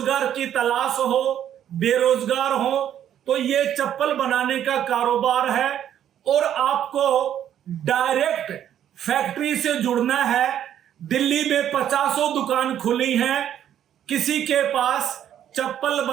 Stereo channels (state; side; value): quieter; left; 10.4 dB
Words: की तलाश हो, बेरोजगार हो, तो ये चप्पल बनाने का कारोबार है, और आपको डायरेक्ट फैक्ट्री से जुड़ना है। दिल्ली में 50 दुकान खुली हैं, किसी के पास चप्पल